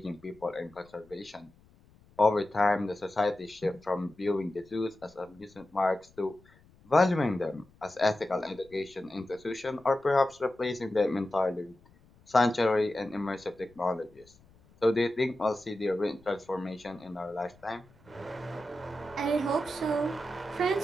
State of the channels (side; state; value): left; noise; rumble, 28 dB below the sound